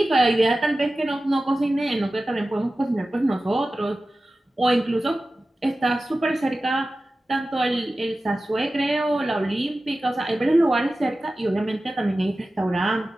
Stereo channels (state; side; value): normal; both; correlation 0.95